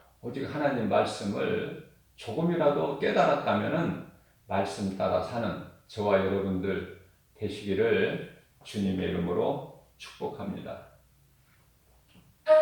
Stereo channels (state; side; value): identical; both; correlation 1.00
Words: 오직 하나님 말씀을 조금이라도 깨달았다면 말씀 따라 사는 저와 여러분들 되시기를 주님의 이름으로 축복합니다.